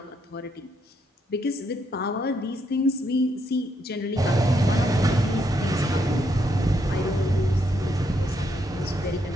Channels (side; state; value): both; normal; correlation 0.76